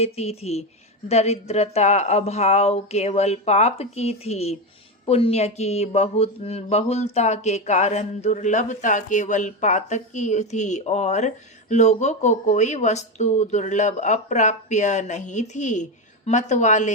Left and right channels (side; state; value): both; normal; correlation 0.13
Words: थी। दरिद्रता अभाव केवल पाप की थी। पुण्य की बहुलता के कारण दुर्लभता केवल पातक की थी और लोगों को कोई वस्तु दुर्लभ अप्राप्य नहीं थी। मत